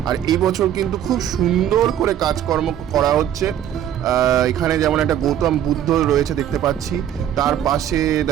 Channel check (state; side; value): quieter; left; 10.6 dB